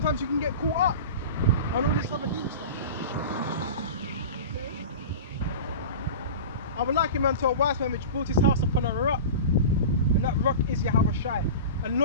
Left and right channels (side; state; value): both; inverted; correlation -0.31